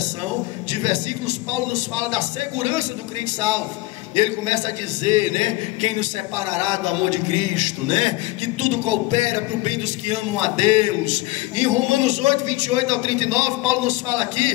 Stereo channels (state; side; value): quieter; right; 19.5 dB